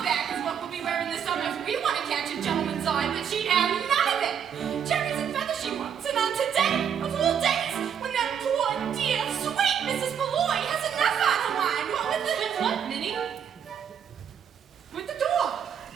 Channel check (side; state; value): left; quieter; 8.2 dB